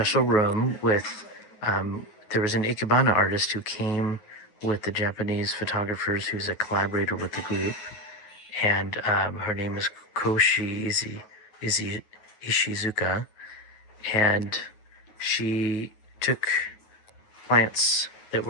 room with. There was an Ikebana artist who came with the Japanese photographers, who's a collaborator with the group, and her name is Koshi Ishizuka, and she took plants that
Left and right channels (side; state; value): right; late; 9.4 ms